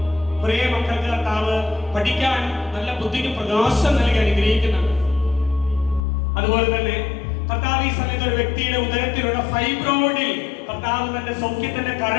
പ്രിയ മക്കൾക്ക് കർത്താവ് പഠിക്കാൻ നല്ല ബുദ്ധിക്ക് പ്രകാശം നൽകി അനുഗ്രഹിക്കുന്നുണ്ട്. അതുപോലെ തന്നെ കർത്താവ് ഈ സമയത്ത് ഒരു വ്യക്തിയുടെ ഉദരത്തിലുള്ള ഫൈബ്രോയിഡിൽ കർത്താവ് തന്റെ സൗഖ്യത്തിന്റെ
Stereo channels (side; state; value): right; drops out; at 6.0 s